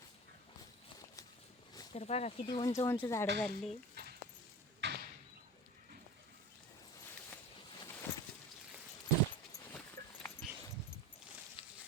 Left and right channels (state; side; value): normal; both; correlation 0.34